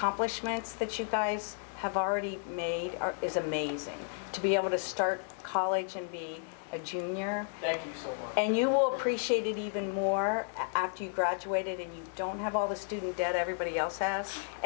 that you guys have already made is amazing. To be able to start college and be a junior. Thank you so much. And you will appreciate it even more after you graduated and you don't have all the student debt everybody else has,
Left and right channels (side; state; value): right; silent; digital silence